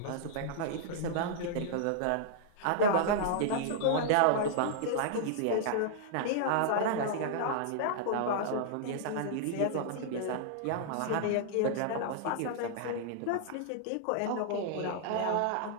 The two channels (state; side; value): different; both; correlation -0.01